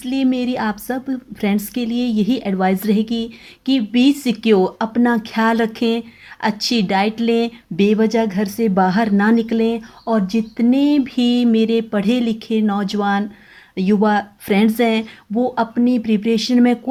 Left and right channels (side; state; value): both; identical; correlation 1.00